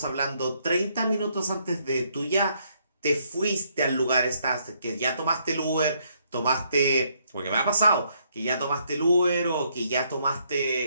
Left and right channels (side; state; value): both; inverted; correlation -0.72